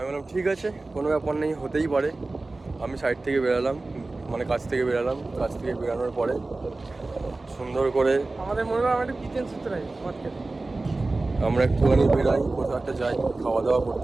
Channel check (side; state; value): left; quieter; 3.2 dB